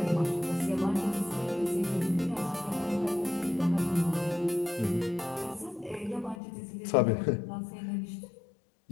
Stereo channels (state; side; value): drops out; right; at 6.4 s